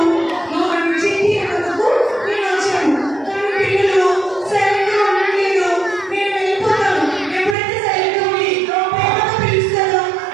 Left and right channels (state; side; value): drops out; left; at 7.6 s